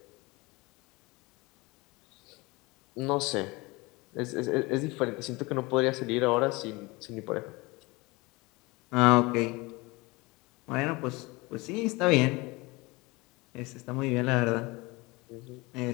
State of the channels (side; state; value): right; quieter; 24.0 dB